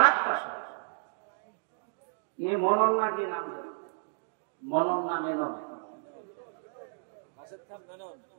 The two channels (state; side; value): silent; left; digital silence